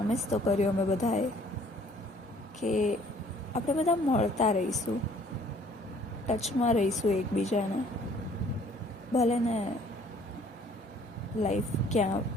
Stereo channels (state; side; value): normal; both; correlation 0.58